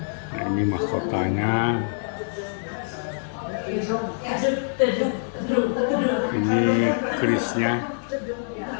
Nah, ini mahkotanya. Ini kerisnya.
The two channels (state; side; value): silent; right; 62 dB below the other